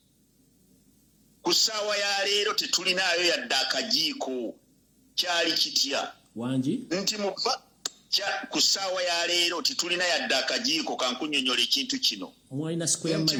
ku ssaawa ya leero tetulinayo yadde akajiiko kyali kitya wangi nti ku ssaawa ya leero tetulina yadde akajiiko kankunyonyola ekintu kino mwalina square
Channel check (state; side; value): identical; both; correlation 1.00